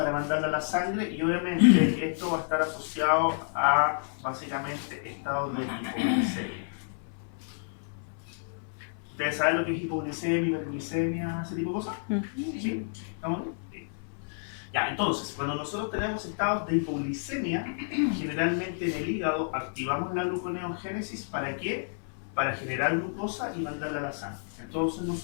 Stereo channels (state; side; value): silent; right; 58 dB below the other